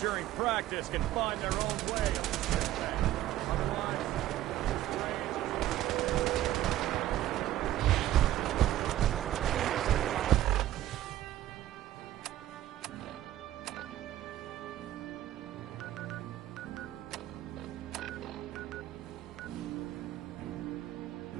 during practice can find their own way. Otherwise,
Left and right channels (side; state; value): left; quieter; 13.8 dB